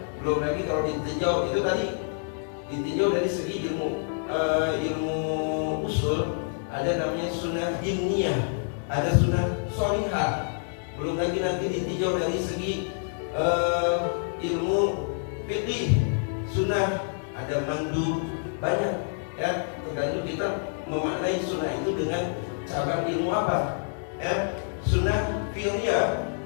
Belum lagi kalau ditinjau itu tadi ditinjau dari segi ilmu usul, ada namanya sunnah dimniyah, ada sunnah sholihah. Belum lagi nanti ditinjau dari segi ilmu fiqih, sunnah, ada mandu, banyak ya. Tergantung kita memaknai sunnah itu dengan cabang ilmu apa ya. Sunnah fi'liyah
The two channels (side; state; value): right; silent; digital silence